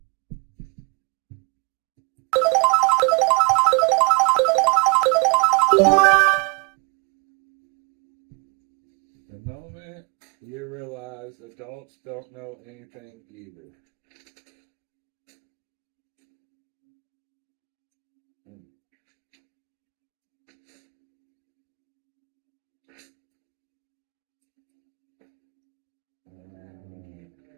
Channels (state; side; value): quieter; left; 32.4 dB